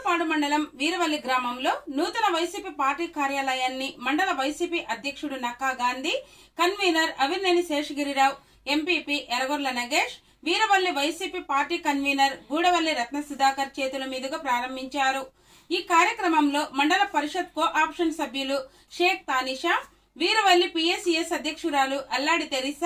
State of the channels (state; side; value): identical; both; correlation 1.00